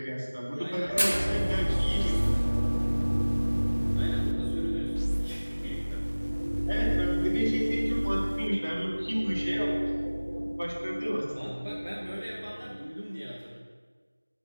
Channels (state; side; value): inverted; both; correlation -1.00